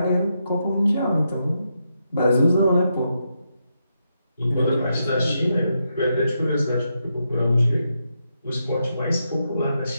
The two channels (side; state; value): both; inverted; correlation -0.83